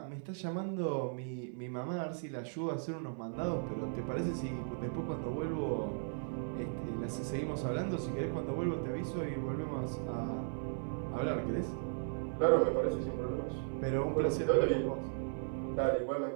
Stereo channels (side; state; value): left; silent; digital silence